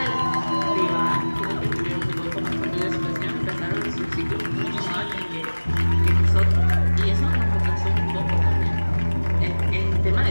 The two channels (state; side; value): inverted; both; correlation -1.00